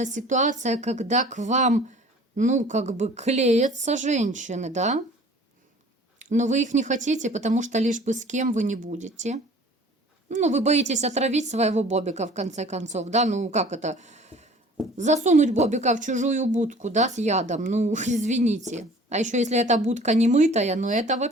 ситуация, когда к вам, клеятся женщины, да? Но вы их не хотите, потому что лишь бы с кем вы не будете. Вы боитесь отравить своего бобика, в конце концов, да? Как это? Засунуть бобика в чужую будку, да, с ядом. Извините. А еще если эта будка не мытая, это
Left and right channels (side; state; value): both; normal; correlation 0.48